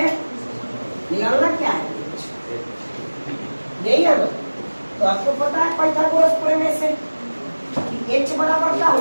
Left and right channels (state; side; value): inverted; both; correlation -1.00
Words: निकालना क्या है यही है ना तो आपको पता है पाइथागोरस प्रमेय से कि h बराबर क्या